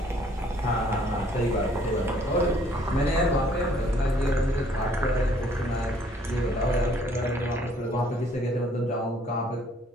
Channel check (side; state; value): both; normal; correlation 0.61